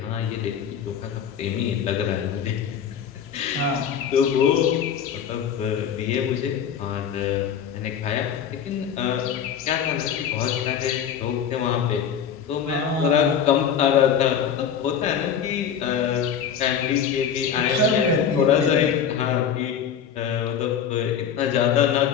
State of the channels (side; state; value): right; quieter; 7.9 dB